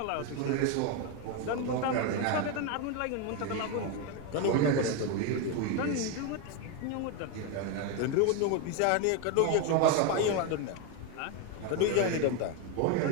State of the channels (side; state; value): both; different; correlation 0.02